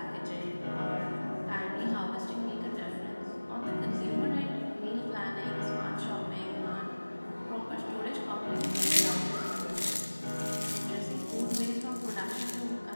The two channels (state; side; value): inverted; both; correlation -1.00